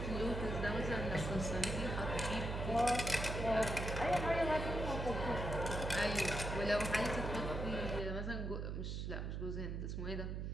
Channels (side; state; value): right; noise; hum, 3 dB below the sound